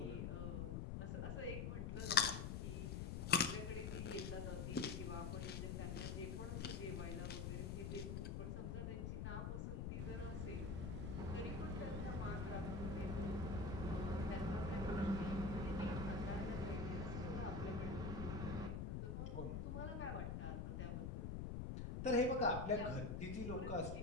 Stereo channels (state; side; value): noise; left; rumble, 2 dB below the sound